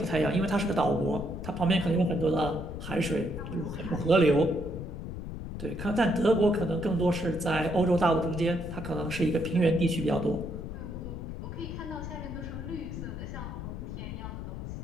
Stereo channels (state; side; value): noise; left; rumble, 7 dB below the sound